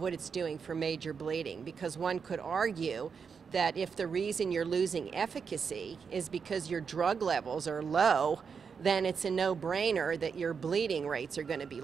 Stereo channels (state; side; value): quieter; left; 6.0 dB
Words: it's doing for major bleeding. Because one could argue that if the reason you're losing efficacy is because your drug levels are low, then it's a no-brainer that your bleeding rates are going to be